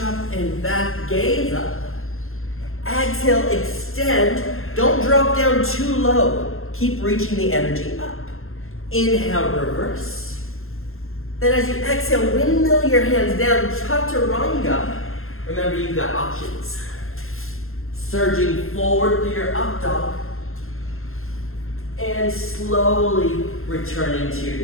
and back, gaze up. Exhale, extend. Don't drop down too low. Keep reaching the energy up. Inhale, reverse. Then as you exhale, windmill your hands down, chaturanga. Remember, you've got options. Surging forward through your up dog. And slowly returning to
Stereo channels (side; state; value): right; late; 0.61 ms